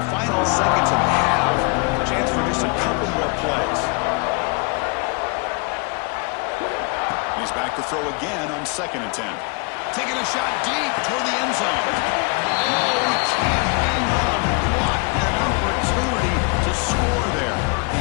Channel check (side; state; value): right; quieter; 32.5 dB